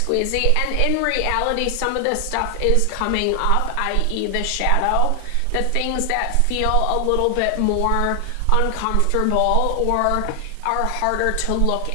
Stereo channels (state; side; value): different; both; correlation 0.00